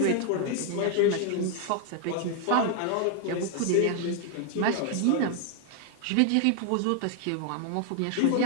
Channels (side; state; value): both; different; correlation 0.00